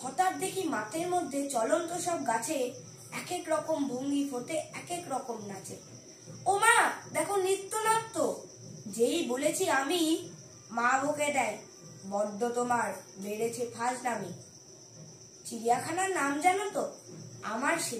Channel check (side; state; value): both; identical; correlation 1.00